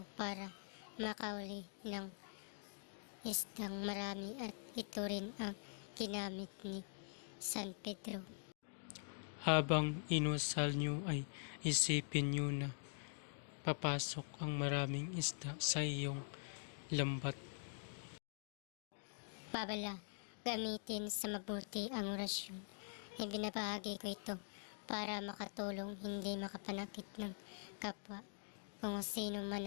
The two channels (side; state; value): right; silent; digital silence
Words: para makauli ng isdang marami, at ito rin ang ginamit ni San Pedro. Habang inusal nyo ay isipin nyo na papasok ang maraming isda sa iyong lambat. Babala, gamitin sa mabuti ang orasyon. Ibinabahagi ko ito para makatulong, hindi makapanakit ng kapwa. Kung sino man